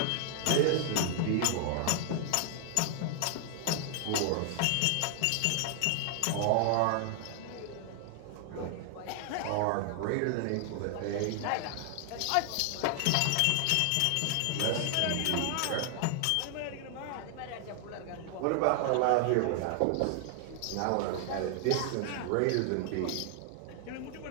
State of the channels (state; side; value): different; both; correlation 0.00